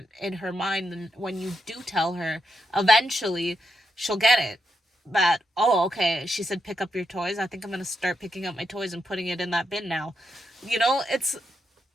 in her mind. And when you do tell her, eventually she'll get it, that, oh, okay, she said pick up your toys, I think I'm going to start picking up my toys and putting it in that bin now. It's,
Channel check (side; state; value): both; normal; correlation 0.83